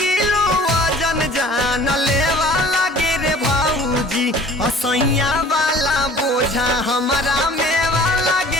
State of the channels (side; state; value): both; normal; correlation 0.48